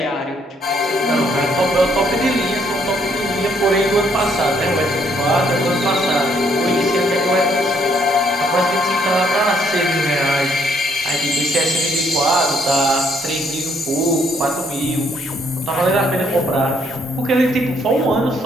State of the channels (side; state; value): both; normal; correlation 0.69